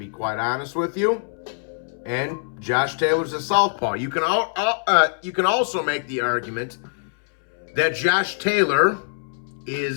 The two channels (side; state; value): right; silent; 63 dB below the other